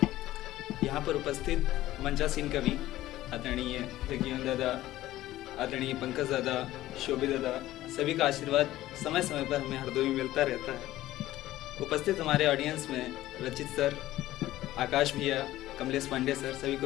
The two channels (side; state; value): right; quieter; 15.3 dB